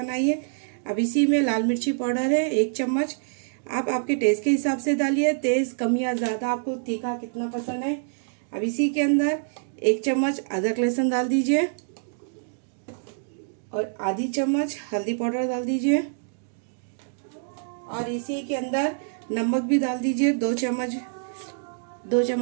अब इसी में लाल मिर्ची पाउडर है 1 चम्मच, आप आपके टेस्ट के हिसाब से डालिए, तेज़ कम या ज़्यादा, आपको तीखा कितना पसंद है। अब इसी के अंदर 1 चम्मच अदरक लहसुन डाल दीजिए और आधी चम्मच हल्दी पाउडर डाल दीजिए और इसी के अंदर नमक भी डाल दीजिए। 2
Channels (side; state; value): left; silent; digital silence